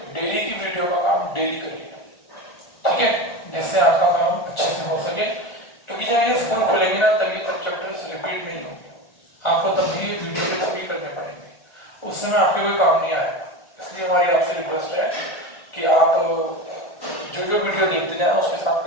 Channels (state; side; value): late; right; 1.4 ms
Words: डेली की वीडियो का काम डेली करिए, ठीक है, जिससे आपका काम अच्छे से हो सके। क्योंकि जब ये स्कूल खुलेंगे ना तब ये सब चैप्टर्स रिपीट नहीं होंगे, आपको तब भी वीडियो के थ्रू करने पड़ेंगे, उस समय आपके कोई काम नहीं आएगा। इसलिए हमारी आपसे रिक्वेस्ट है कि आप जो जो वीडियो देखते जाएं उसके साथ